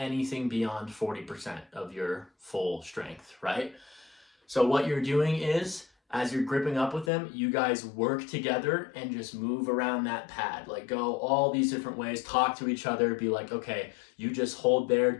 beyond 40% of your full strength, right? So what you're doing is, as you're gripping up with them, you guys work together and just move around that pad. Like go all these different ways, talk to each other, be like, okay, you just hold there,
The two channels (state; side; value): drops out; right; at 7.1 s